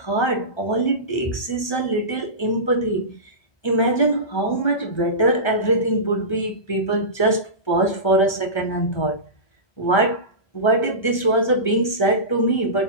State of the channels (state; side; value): late; right; 1.3 ms